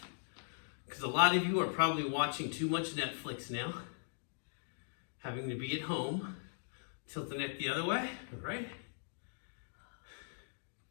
because a lot of you are probably watching too much Netflix now, having to be at home. Tilt the neck the other way, all right?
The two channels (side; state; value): right; silent; digital silence